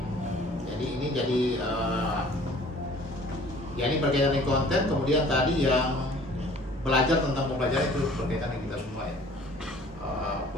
Jadi ini ini berkaitan dengan konten. Kemudian tadi yang belajar tentang pembelajaran itu berkaitan dengan kita semua ya.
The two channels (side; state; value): both; normal; correlation 0.51